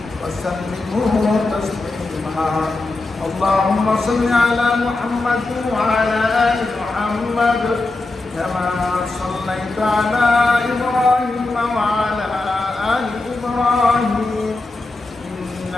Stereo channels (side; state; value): right; quieter; 3.2 dB